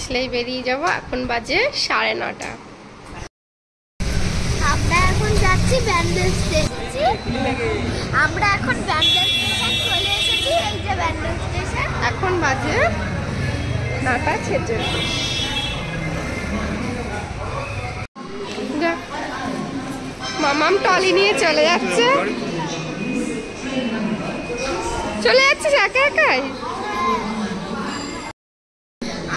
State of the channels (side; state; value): both; identical; correlation 1.00